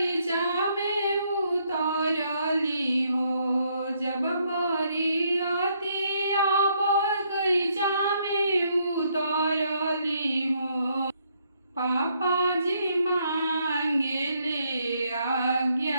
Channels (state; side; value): inverted; both; correlation -0.72